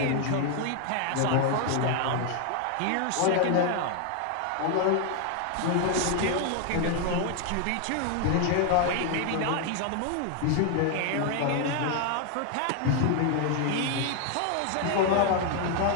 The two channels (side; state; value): both; different; correlation 0.01